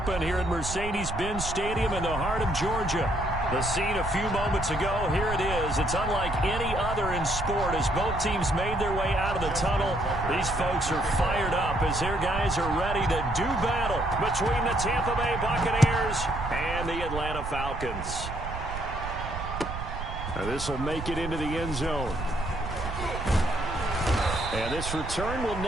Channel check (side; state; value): right; noise; rumble, 7 dB below the sound